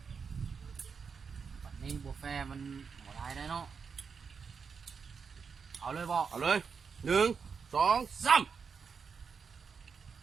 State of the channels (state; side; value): quieter; left; 5.8 dB